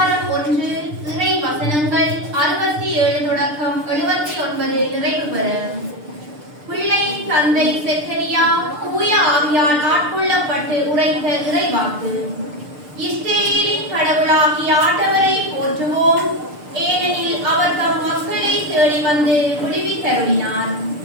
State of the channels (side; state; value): left; late; 6.7 ms